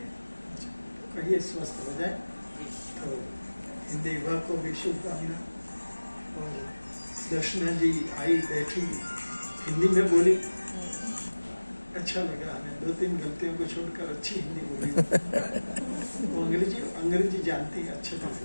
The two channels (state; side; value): inverted; both; correlation -1.00